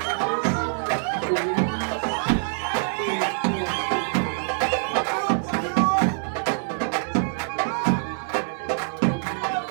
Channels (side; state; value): left; silent; 62 dB below the other